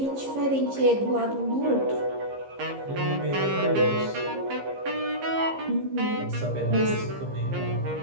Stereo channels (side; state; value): left; late; 15 ms